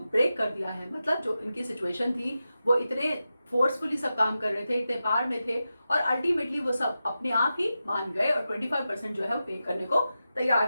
कर दिया है. मतलब जो इनकी सिचुएशन थी वो इतने फोर्सफुली सब काम कर रहे थे, इतने पार में थे, और अल्टीमेटली वो सब अपने आप ही मान गए और 25% जो है वो पे करने को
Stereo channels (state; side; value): inverted; both; correlation -0.91